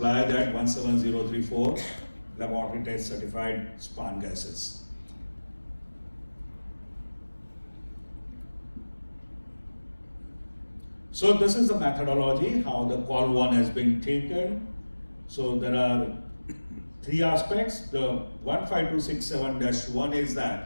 that 17034 laboratory test certified span gases. So this is the methodology, how the call one has been taken. So there are three aspects. The 15267-1 is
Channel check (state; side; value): inverted; both; correlation -1.00